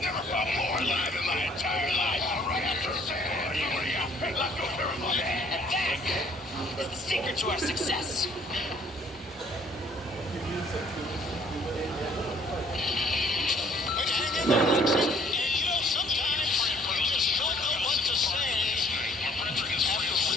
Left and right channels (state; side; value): normal; both; correlation 0.59